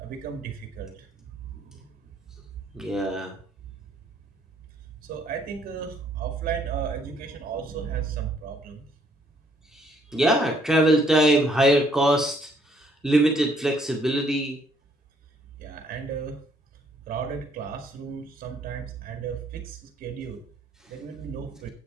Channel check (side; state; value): both; normal; correlation 0.67